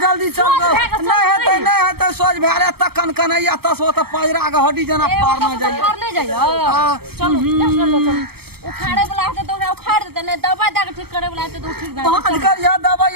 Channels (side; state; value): left; late; 0.96 ms